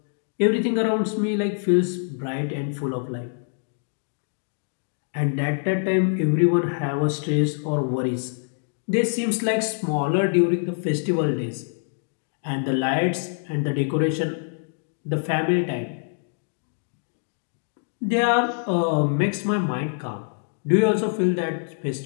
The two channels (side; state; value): right; silent; digital silence